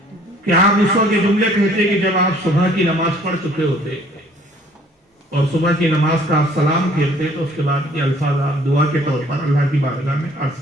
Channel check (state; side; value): normal; both; correlation 0.57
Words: کہ آپ اس وقت یہ جملے کہتے کہ جب آپ صبح کی نماز پڑھ چکے ہوتے اور صبح کی نماز کا آپ سلام پھیرتے تو اس کے بعد یہ الفاظ آپ دعا کے طور پر اللہ کی بارگاہ میں عرض